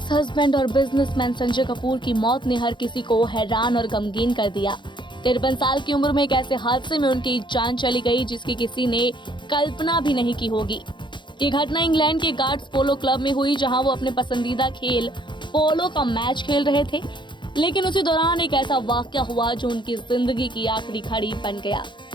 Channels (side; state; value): right; late; 0.23 ms